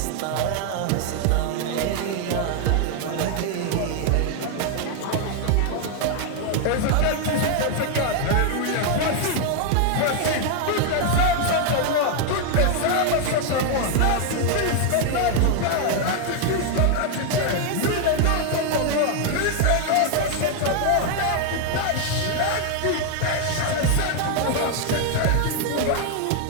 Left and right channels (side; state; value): both; different; correlation 0.00